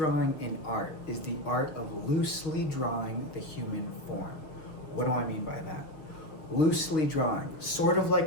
in art is the art of loosely drawing the human form. What do I mean by that? Loosely drawing, sort of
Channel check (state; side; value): late; right; 6.6 ms